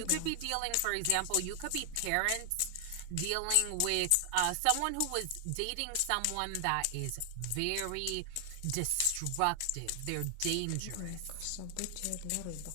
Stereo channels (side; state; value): both; different; correlation 0.00